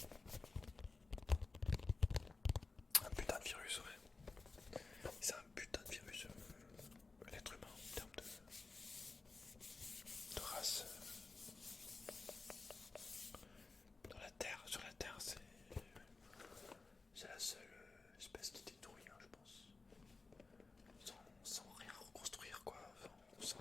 Un putain de virus, ouais. C'est un putain de virus, l'être humain en termes de race. Dans la Terre, sur la Terre, c'est la seule espèce qui détruit, hein, je pense. Sans rien reconstruire, quoi. Sans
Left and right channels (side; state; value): right; quieter; 3.9 dB